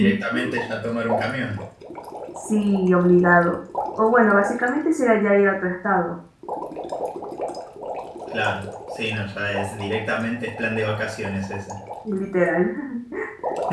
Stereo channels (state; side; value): identical; both; correlation 1.00